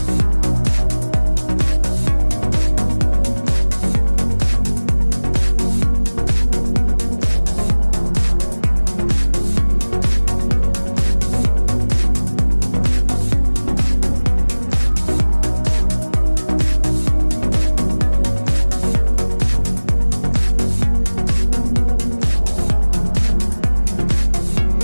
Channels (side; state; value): both; inverted; correlation -1.00